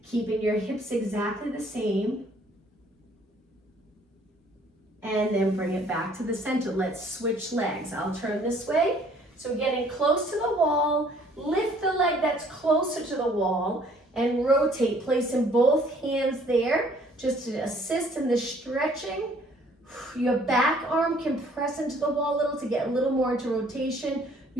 Keeping your hips exactly the same. And then bring it back to the center. Let's switch legs. I'll turn this way. So getting close to the wall, lift the leg that's closer to the wall and rotate, placing both hands there just to assist in the stretching. Your back arm can press into the wall a little to get a little more into rotation.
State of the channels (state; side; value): normal; both; correlation 0.59